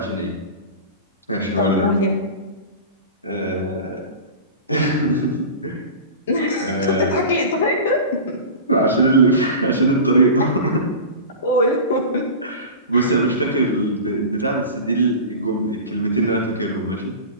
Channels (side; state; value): both; inverted; correlation -0.32